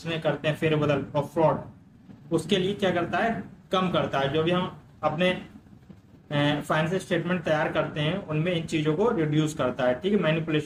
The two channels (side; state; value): both; identical; correlation 1.00